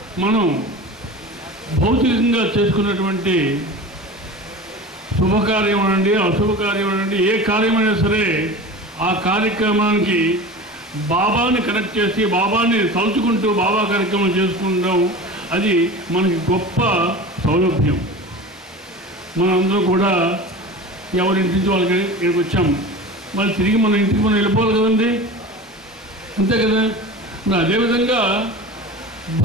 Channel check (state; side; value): normal; both; correlation 0.34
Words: మనం భౌతికంగా చేసుకున్నటువంటి శుభకార్యం అనండి, అశుభకార్యం అనండి, ఏ కార్యమైనా సరే ఆ కార్యక్రమానికి బాబాని కనెక్ట్ చేసి బాబాని తలుచుకుంటూ బాబా కార్యక్రమం చేసుకుంటాం. అది మనకి గొప్ప సౌలభ్యం. మనందరూ కూడా ఎవరింటి నుంచి వాళ్ళకి ఇక్కడికి వచ్చాం, మళ్ళీ తిరిగి మన ఇంటికి మనం వెళ్ళిపోవాలి కదండి, అంతే కదా. మరి అదేవిధంగా